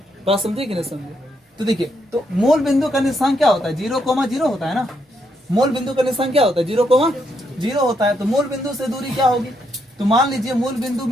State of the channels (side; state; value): both; normal; correlation 0.77